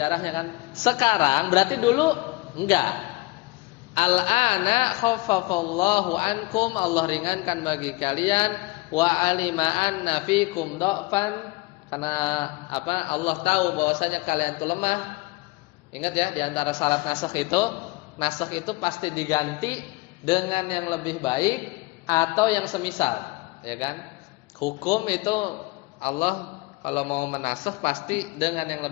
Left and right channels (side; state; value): right; quieter; 22.9 dB